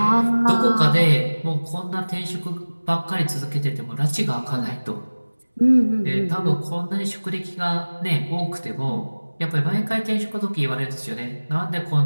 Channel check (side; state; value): both; inverted; correlation -1.00